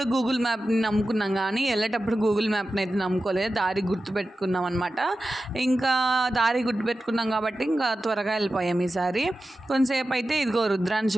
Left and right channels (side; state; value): both; normal; correlation 0.93